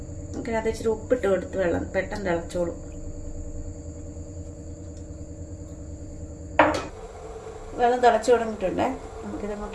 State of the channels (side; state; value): both; identical; correlation 1.00